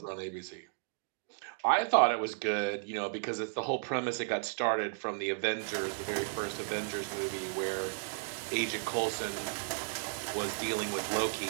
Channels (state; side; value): silent; left; digital silence